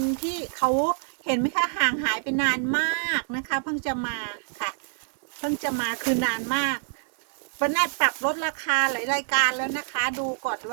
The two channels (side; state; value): left; silent; 61 dB below the other